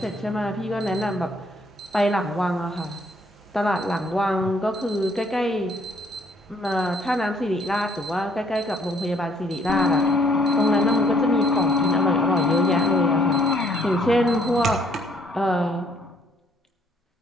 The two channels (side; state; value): both; normal; correlation 0.65